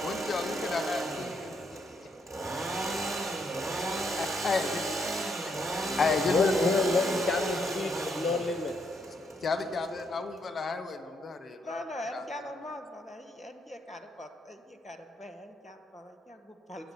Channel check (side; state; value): both; normal; correlation 0.76